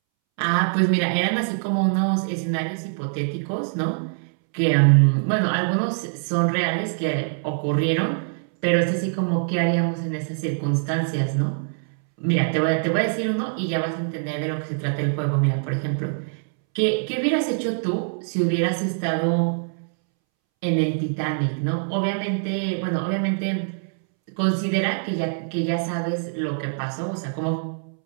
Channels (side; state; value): left; silent; 63 dB below the other